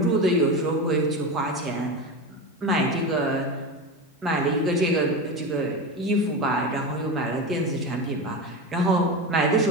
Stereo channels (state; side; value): normal; both; correlation 0.22